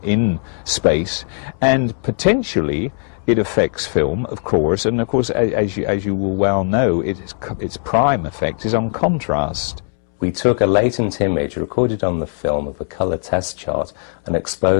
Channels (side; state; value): right; silent; 67 dB below the other